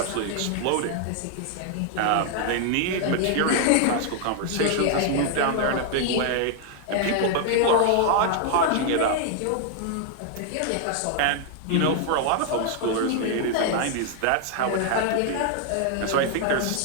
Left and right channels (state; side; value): different; both; correlation 0.00